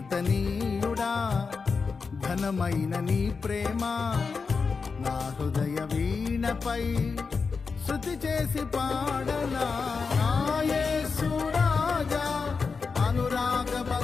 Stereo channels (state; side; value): quieter; right; 5.0 dB